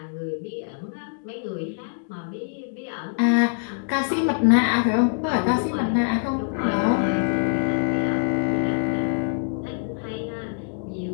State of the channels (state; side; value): silent; right; digital silence